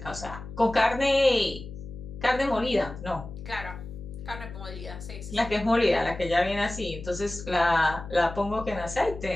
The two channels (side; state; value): left; noise; hum, 13 dB below the sound